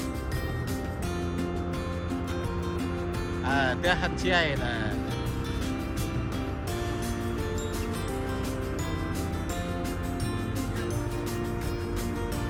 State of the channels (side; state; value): both; identical; correlation 1.00